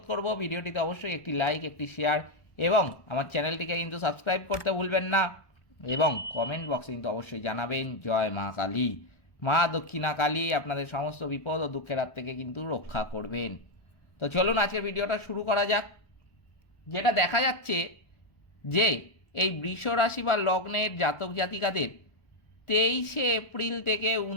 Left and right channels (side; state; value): right; late; 1.2 ms